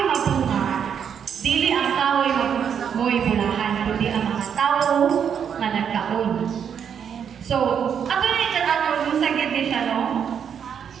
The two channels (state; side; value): quieter; left; 7.8 dB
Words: mabunga, dili ang kahoy mo'y bulahan, kundi ang mga tao na nagkaon. So, ato na yung ato, yung sagit din siya, no?